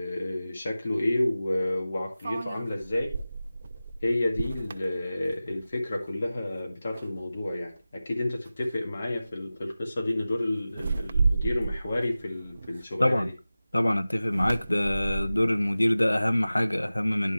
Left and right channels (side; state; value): both; inverted; correlation -0.96